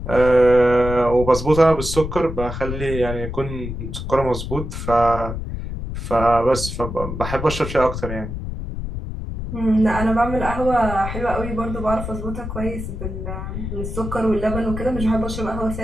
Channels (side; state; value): left; noise; rumble, 6 dB below the sound